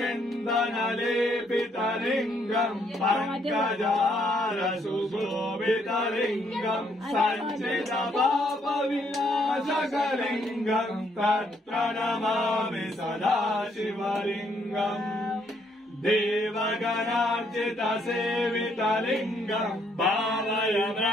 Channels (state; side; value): normal; both; correlation 0.70